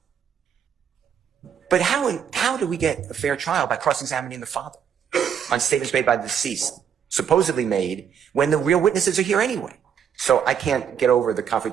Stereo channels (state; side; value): quieter; left; 8.1 dB